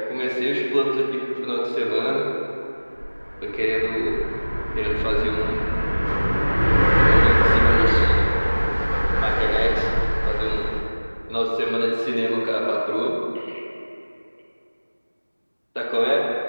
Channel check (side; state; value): both; inverted; correlation -1.00